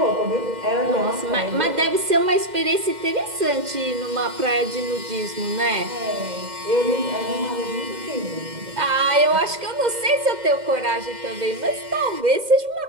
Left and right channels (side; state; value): left; late; 2.1 ms